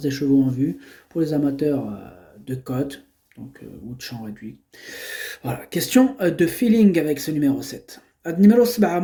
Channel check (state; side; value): identical; both; correlation 1.00